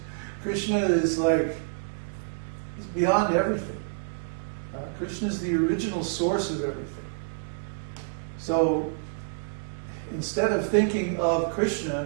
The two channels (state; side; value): silent; left; digital silence